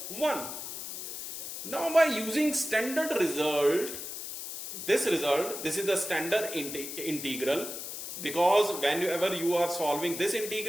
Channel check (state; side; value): noise; left; hiss, 7 dB below the sound